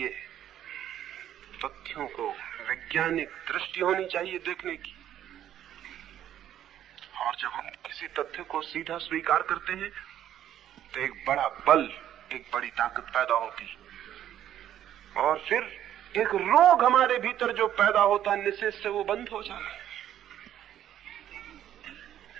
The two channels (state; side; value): quieter; left; 11.2 dB